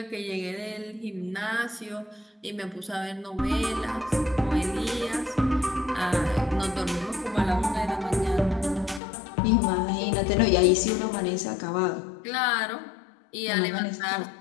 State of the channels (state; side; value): drops out; right; at 9.0 s